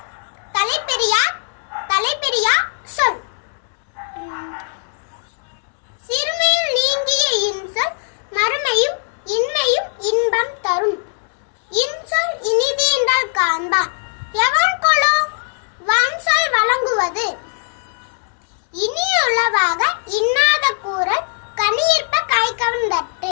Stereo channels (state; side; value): silent; right; 61 dB below the other